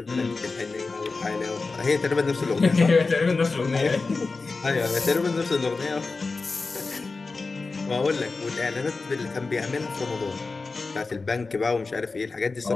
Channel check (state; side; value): quieter; right; 3.9 dB